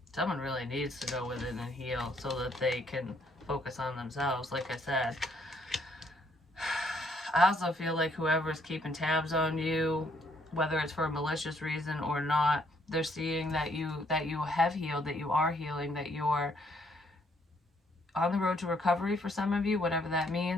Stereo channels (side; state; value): both; normal; correlation 0.69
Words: Someone really needs to go within and heal so that they can focus on themselves, like I said. I also feel like whoever's keeping tabs on you, whether it's for a malicious reason or not, they're seeing that you have healed, that you are healing, that you're on the road to recovery for some of you, whatever that